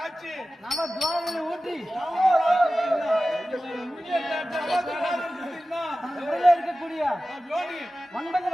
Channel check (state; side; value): normal; both; correlation 0.95